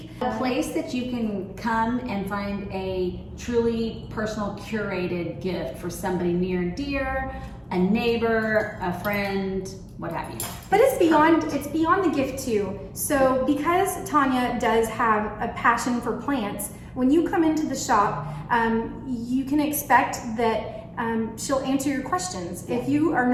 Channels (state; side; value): identical; both; correlation 1.00